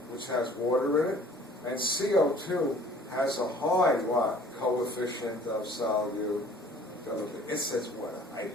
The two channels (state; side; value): normal; both; correlation 0.52